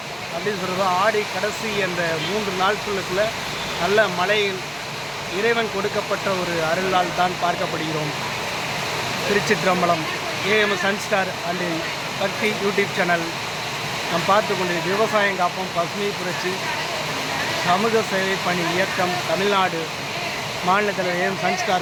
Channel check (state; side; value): identical; both; correlation 1.00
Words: அப்படின்னு சொல்கிறது, ஆடி கடைசி என்ற 3 நாட்களுக்குள்ள நல்ல மழையில் இறைவன் கொடுக்கப்பட்ட ஒரு அருளால் தான் பார்க்கப்படுகிறோம். திருச்சிற்றம்பலம் ஏஎம்எஸ் சன்ஸ்டார் அண்ட் பக்தி யூடியூப் சேனல் நாம் பார்த்து கொண்டிருக்க விவசாயம் காப்போம் பசுமை புரட்சி சமூக சேவை பணி இயக்கம் தமிழ்நாடு மாநில தலைவர் ஏஎம்